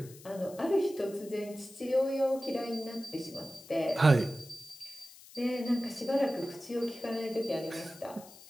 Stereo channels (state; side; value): noise; left; hiss, 20 dB below the sound